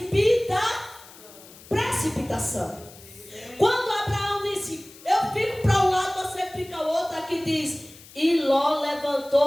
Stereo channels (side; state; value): left; noise; hiss, 21 dB below the sound